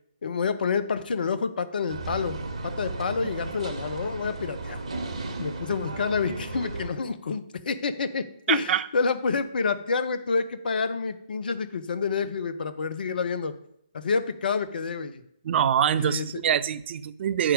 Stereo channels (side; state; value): both; inverted; correlation -0.55